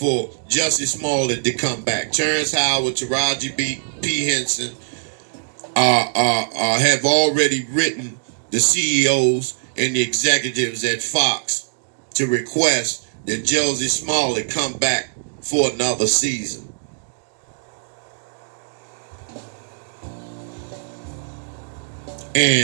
Jussie Smollett to come back. Terrence Howard, Taraji P. Henson have already written the CEOs and the executives at Fox to request that Jussie Smollett come back for another season.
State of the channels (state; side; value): silent; left; digital silence